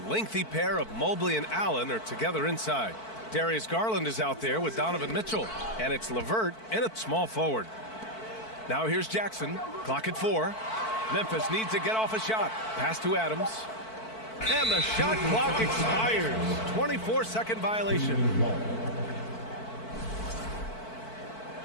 lengthy pair of Mobley and Allen are together inside. Darius Garland is out there with Donovan Mitchell. And it's LeVert in at small forward. Now here's Jackson. Clock at 4. Memphis needs to get off a shot. Pass to Adams. And the shot clock expires. 24-second violation.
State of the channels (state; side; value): late; right; 4.5 ms